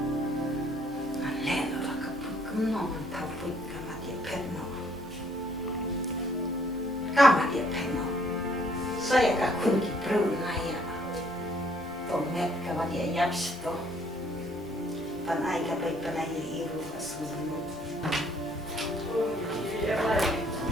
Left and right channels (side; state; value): both; normal; correlation 0.64